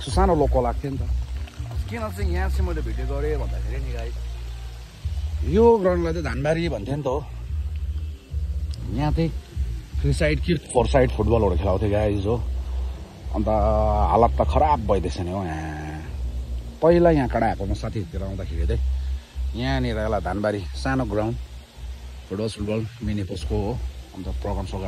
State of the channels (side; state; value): both; identical; correlation 1.00